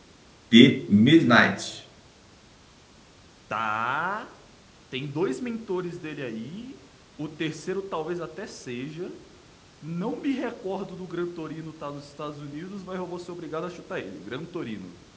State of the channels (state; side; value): identical; both; correlation 1.00